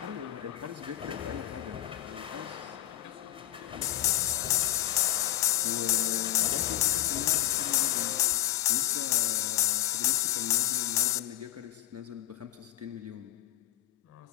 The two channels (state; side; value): quieter; right; 13.1 dB